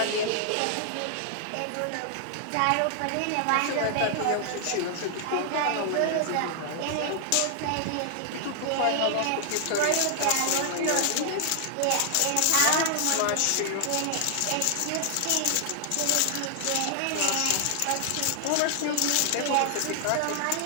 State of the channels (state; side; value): different; both; correlation 0.00